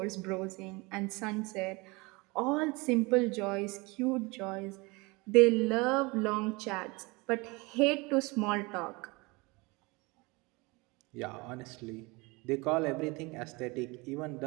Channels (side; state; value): left; quieter; 25.6 dB